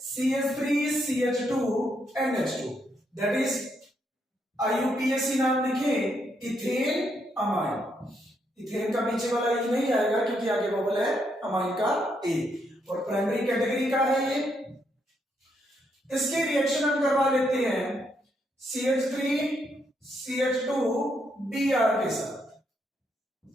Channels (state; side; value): normal; both; correlation 0.77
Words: CH3CH2NH2, दैट इज IUPAC नाम लिखे, इथेन अमाइन। इथेन का पीछे वाला ई नहीं आएगा क्योंकि आगे बबल है अमाइन का ए, और प्राइमरी कैटेगरी का है ये। इसके रिएक्शन हम करवा लेते हैं CH3CH2Br के साथ।